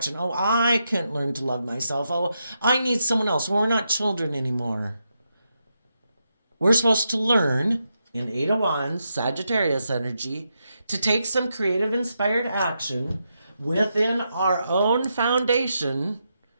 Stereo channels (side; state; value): both; inverted; correlation -0.84